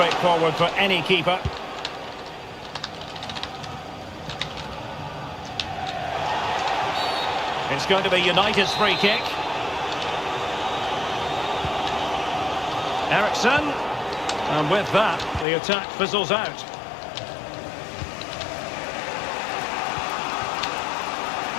for any keeper. It's going to be United's free kick. Eriksen. And with that, the attack fizzles out.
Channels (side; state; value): right; drops out; at 15.5 s